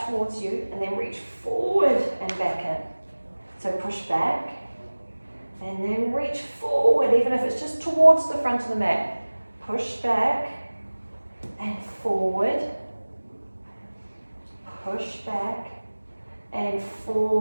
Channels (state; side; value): inverted; both; correlation -1.00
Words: towards you and then reach forward and back in. So push back and then reach forward, even if it's just towards the front of the mat. Push back and forward. Push back and